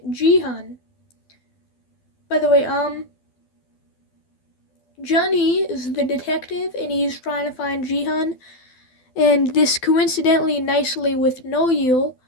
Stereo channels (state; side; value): late; right; 12 ms